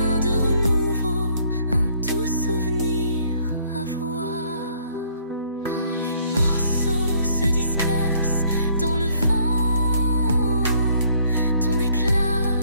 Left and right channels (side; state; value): both; inverted; correlation -0.63